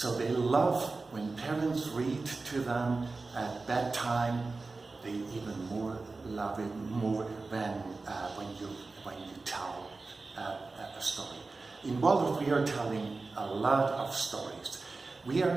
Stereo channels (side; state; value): left; quieter; 3.7 dB